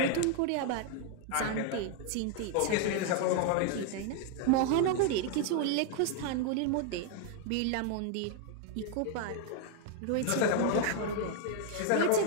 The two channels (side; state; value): both; different; correlation 0.00